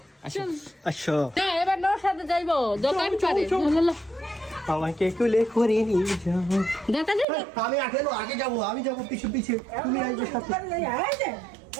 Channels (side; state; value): left; drops out; at 7.2 s